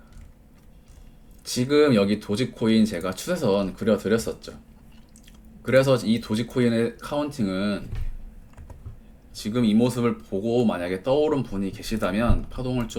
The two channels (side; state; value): both; identical; correlation 1.00